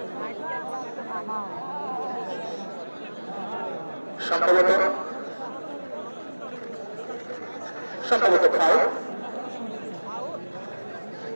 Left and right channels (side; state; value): both; inverted; correlation -1.00